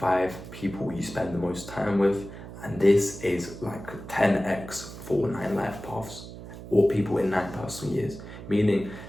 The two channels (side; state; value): right; noise; hum, 13 dB below the sound